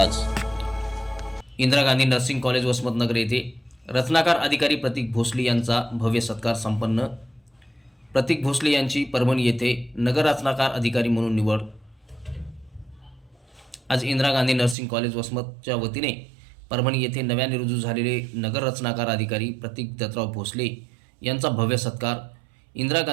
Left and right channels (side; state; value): left; drops out; at 14.8 s